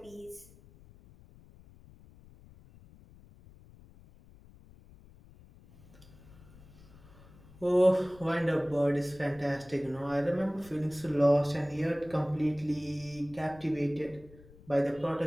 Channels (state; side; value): noise; left; rumble, 23 dB below the sound